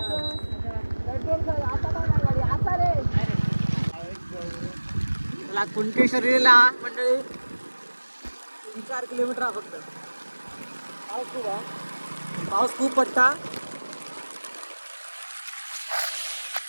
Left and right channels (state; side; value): inverted; both; correlation -1.00